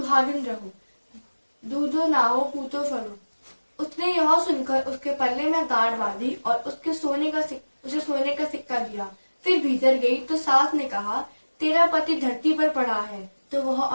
रहो, दूधो नाओ पूतो फलो। उसने यह सुनकर उसके पल्ले में गांठ बांधी और उसे सोने का सिक्का दिया। फिर भीतर गई तो सास ने कहा, तेरा पति धरती पर पड़ा है। तो वह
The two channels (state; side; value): inverted; both; correlation -1.00